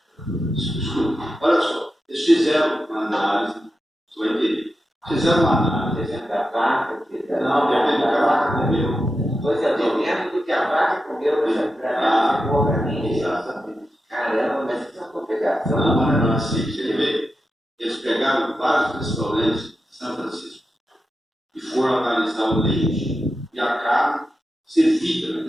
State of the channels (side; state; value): both; normal; correlation 0.89